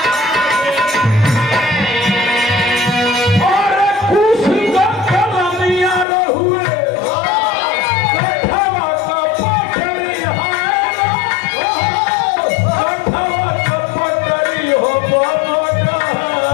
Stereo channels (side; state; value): right; drops out; at 6.1 s